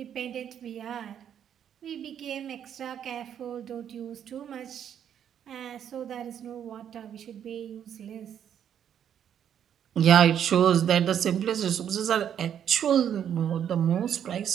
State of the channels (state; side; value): quieter; left; 9.2 dB